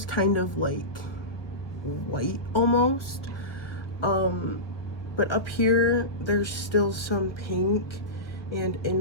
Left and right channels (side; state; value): right; late; 1.1 ms